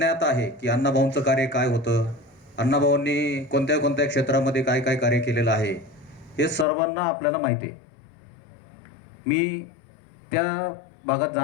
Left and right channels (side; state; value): right; drops out; at 6.7 s